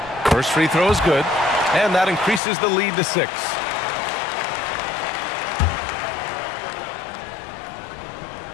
First free throw is good, and that increases the lead to 6.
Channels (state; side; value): drops out; right; at 2.4 s